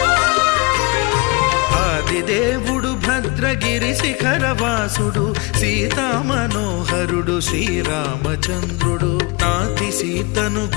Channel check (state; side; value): quieter; right; 26.3 dB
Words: ఆదిదేవుడు భద్రగిరి శిఖరవాసుడు సీతామనోహరుడు శ్రీరామచంద్రుడు. నాతి సీతను